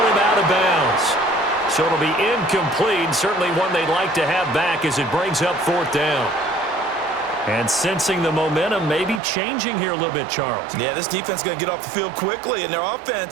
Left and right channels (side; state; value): left; drops out; at 9.2 s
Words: him out of bounds. So it'll be incomplete. Certainly one they'd like to have back as it brings up 4th down. And sensing the momentum maybe changing here a little bit, Charles. Yeah, this defense is going to get off the field quickly, and their